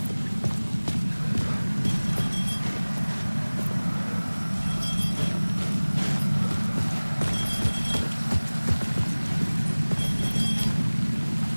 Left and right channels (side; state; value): both; inverted; correlation -1.00